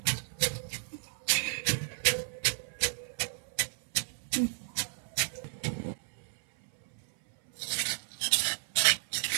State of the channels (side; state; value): left; silent; 56 dB below the other